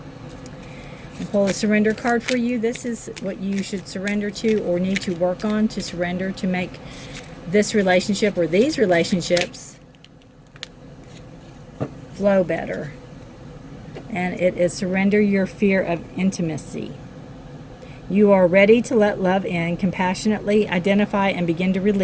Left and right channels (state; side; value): identical; both; correlation 1.00